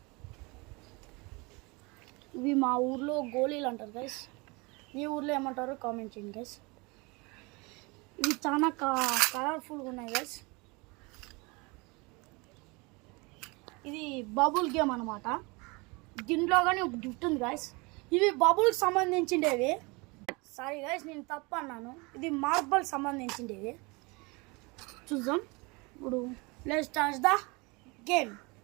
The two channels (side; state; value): left; quieter; 27.1 dB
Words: ఇవి మా ఊర్లో గోళీలు అంటారు గైస్. మీ ఊర్లో ఏమంటారో కామెంట్ చేయండి గైస్. ఇవి చాలా కలర్ఫుల్గా ఉన్నాయి గైస్. ఇది బబుల్ గేమ్ అనమాట. దీంట్లో కానీ ఒక గిఫ్ట్ ఉంది గైస్. ఇవి బబుల్కి సంబంధించిండేవి. సారీ గైస్, నేను తప్పు అన్నాను. ఇది మార్బల్ సంబంధించిండేవి. చూద్దాం ఇప్పుడు. Let's start the game.